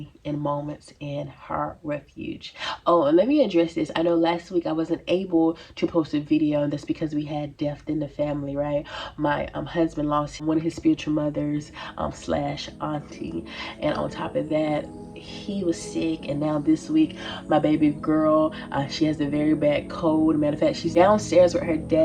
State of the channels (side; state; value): both; identical; correlation 1.00